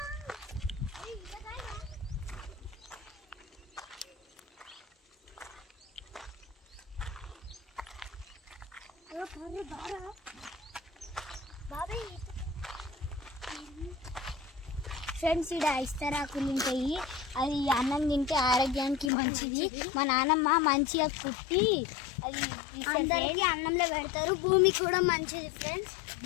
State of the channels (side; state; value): right; drops out; at 19.1 s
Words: ఫ్రెండ్స్, ఇక్కడ ఇస్తరాకులు ఉంటాయి, అది అన్నం తింటే ఆరోగ్యానికి మంచిది. మా నాన్నమ్మ మంచిగా కుట్టి అది అందరికీ అన్నంలో పెడతారు. భూమి కూడా మంచిది ఫ్రెండ్స్,